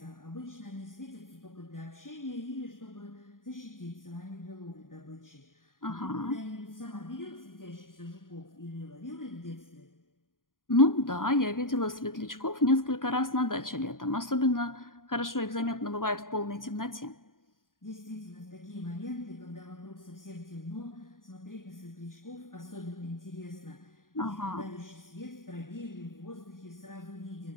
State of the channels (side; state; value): right; late; 0.90 ms